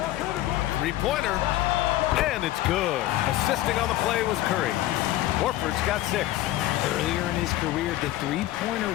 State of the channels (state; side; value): quieter; right; 15.1 dB